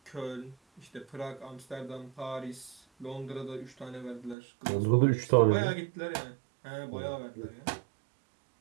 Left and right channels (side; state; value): left; drops out; at 4.4 s